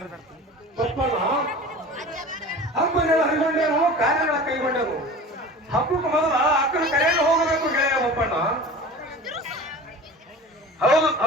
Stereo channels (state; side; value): normal; both; correlation 0.37